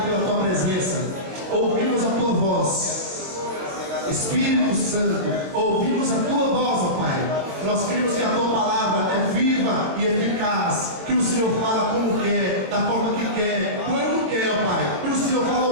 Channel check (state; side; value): late; left; 23 ms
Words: pela tua presença. Ouvimos a tua voz, Espírito Santo, ouvimos a tua voz, ó Pai. Nós cremos que a tua palavra é viva e eficaz, que o Senhor fala como quer, da forma que quer, quando quer, ó Pai. E o Senhor